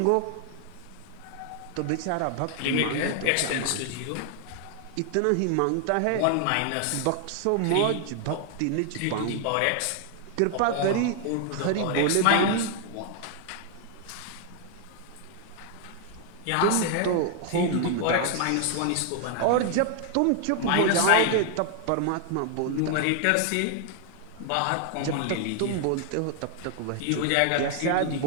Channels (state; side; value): different; both; correlation 0.00